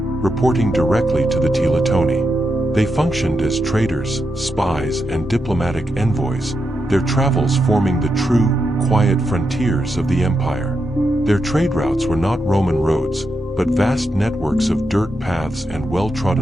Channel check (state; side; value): normal; both; correlation 0.85